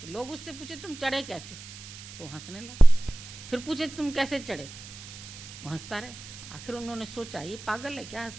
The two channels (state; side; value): noise; right; hiss, 15 dB below the sound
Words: तो लोग उससे पूछे तुम चढ़े कैसे? तो हंसने लगा। फिर पूछे तुम कैसे चढ़े? वो हंसता रहे। आखिर उन्होंने सोचा ये पागल है क्या,